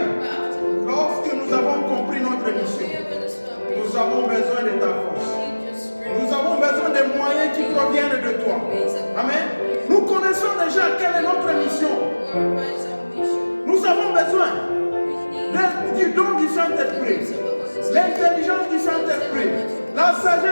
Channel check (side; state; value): both; inverted; correlation -1.00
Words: lorsque nous avons compris notre mission, nous avons besoin de ta force. Nous avons besoin des moyens qui proviennent de toi. Amen. Nous connaissons connaissons déjà quelle est notre mission. What is our mission? Nous avons besoin We need du don du Saint-Esprit, l'intelligence du Saint-Esprit, la